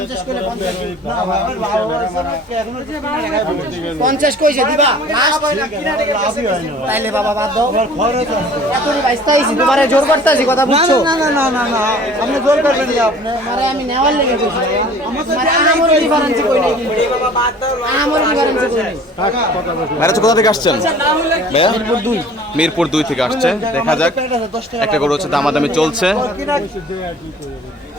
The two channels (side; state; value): both; normal; correlation 0.48